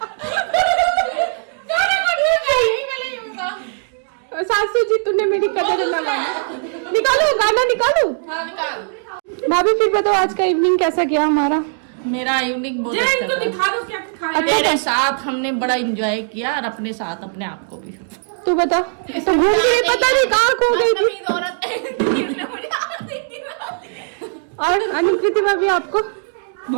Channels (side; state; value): left; silent; digital silence